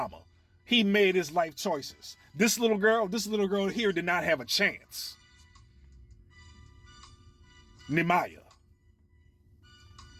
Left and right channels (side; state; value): both; identical; correlation 1.00